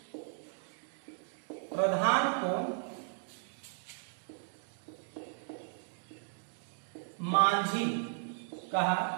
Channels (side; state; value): left; silent; digital silence